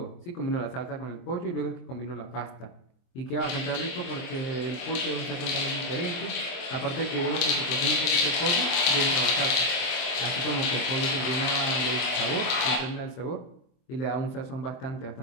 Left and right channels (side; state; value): right; late; 23 ms